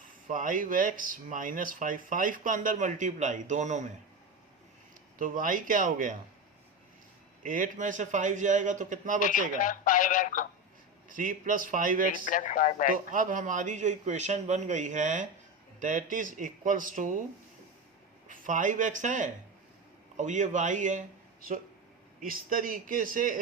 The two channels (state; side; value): normal; both; correlation 0.20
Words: 5x माइनस 5 का अंदर मल्टीप्लाई दोनों में, तो y क्या हो गया 8 में से 5 जाएगा तो कितना बचेगा 3 प्लस 5x। तो अब हमारी जो इक्वेशन बन गई है that is equals to 5x है और ये y है। सो इस तरीके